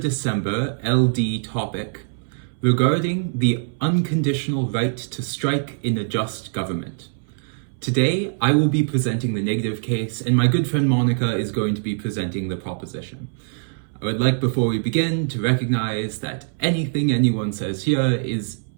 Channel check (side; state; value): left; silent; 64 dB below the other